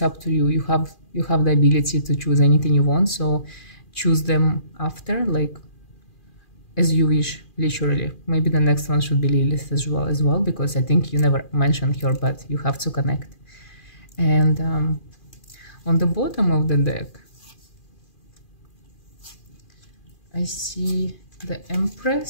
up to you. You have the ability to choose anything you want, so choose them after, like as you wish, literally. Maybe the next one should be Lilith as well, because I think you never mentioned her, but you have to connect. And on the bottom of the deck, I see the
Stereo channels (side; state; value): right; late; 2.4 ms